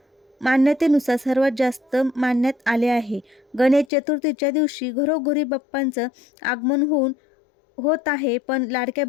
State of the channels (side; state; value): right; drops out; at 3.9 s